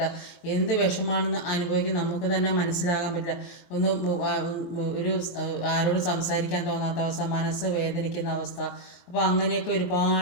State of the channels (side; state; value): right; late; 23 ms